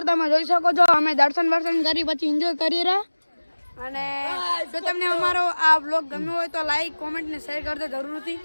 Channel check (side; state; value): both; inverted; correlation -1.00